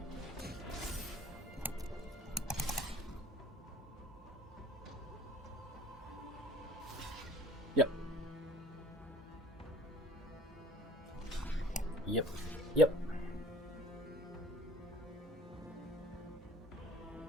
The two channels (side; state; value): both; normal; correlation 0.50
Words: Yep. Yep. Yep.